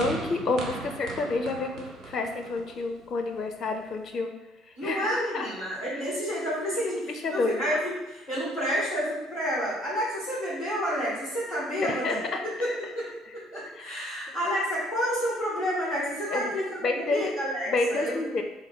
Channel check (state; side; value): normal; both; correlation 0.63